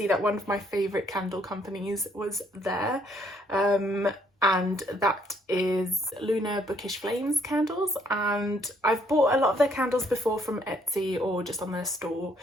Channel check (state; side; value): normal; both; correlation 0.67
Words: that one of my favourite candle companies was there, and that is Lunar Bookish Flames candles, and I've bought a lot of their candles before from Etsy or just on their store,